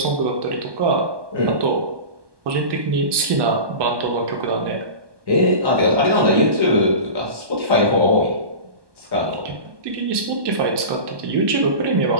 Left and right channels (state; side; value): late; left; 1.2 ms